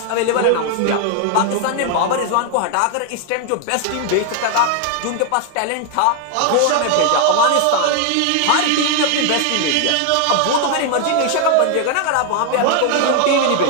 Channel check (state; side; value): different; both; correlation 0.00